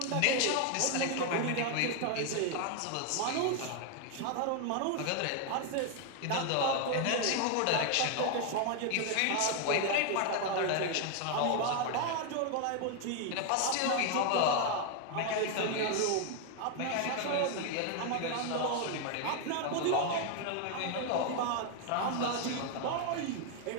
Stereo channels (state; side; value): different; both; correlation 0.00